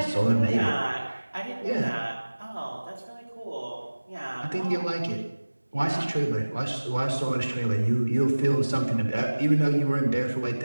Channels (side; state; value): both; inverted; correlation -1.00